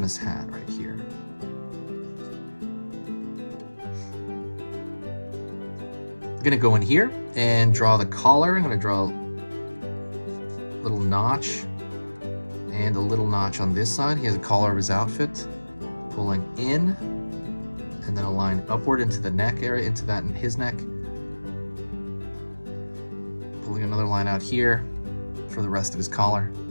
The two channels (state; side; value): inverted; both; correlation -1.00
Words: hat right here. I'm gonna go in here and draw the collar. I'm gonna draw a little notch and a little notch on this side. He has a collar of his outfit, pulling in, and then a line upward into the neck area, into that in his neck. Pulling another line out here for the rest of his collar.